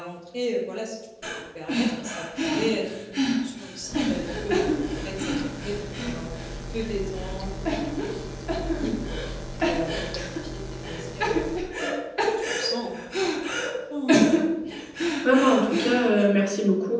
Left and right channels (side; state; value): both; identical; correlation 1.00